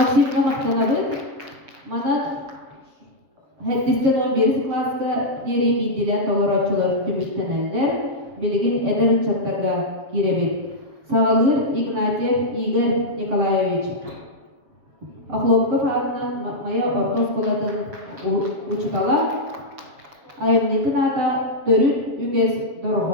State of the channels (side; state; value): left; late; 7.6 ms